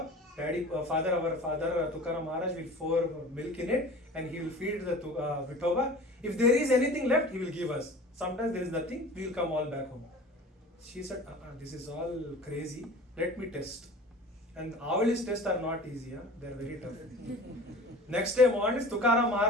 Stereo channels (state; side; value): normal; both; correlation 0.41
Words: Our father Tukaram Maharaj will pour milk in it and he will feed the Vithoba. If there is anything left, he will give us. Sometimes there is nothing, we will come all back home. She said, this is all crazy, let me test. And Avali's tests are not easy, they are very tough. Next day morning, Tukaram